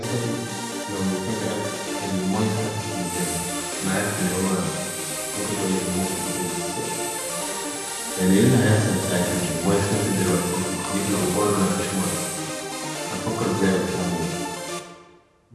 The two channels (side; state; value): both; identical; correlation 1.00